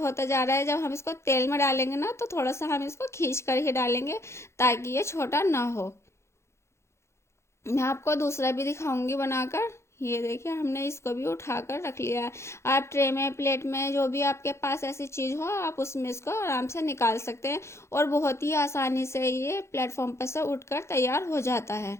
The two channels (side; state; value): right; late; 0.13 ms